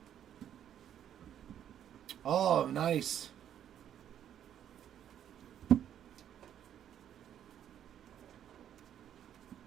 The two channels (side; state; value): left; quieter; 10.1 dB